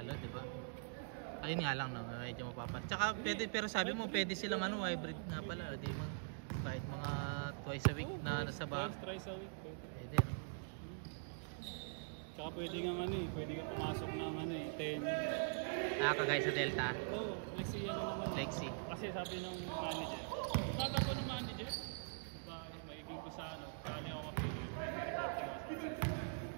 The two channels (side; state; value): left; silent; digital silence